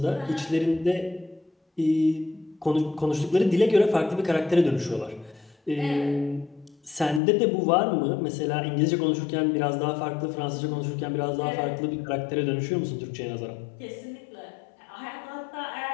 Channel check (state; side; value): drops out; right; at 7.2 s